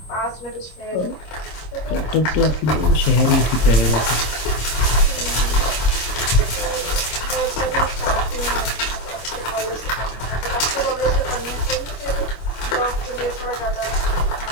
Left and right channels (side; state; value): right; late; 26 ms